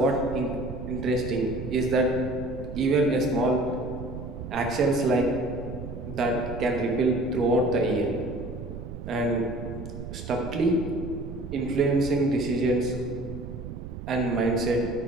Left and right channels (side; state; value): right; noise; rumble, 9 dB below the sound